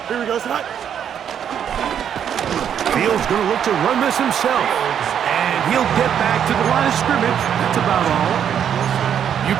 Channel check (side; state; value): left; quieter; 8.8 dB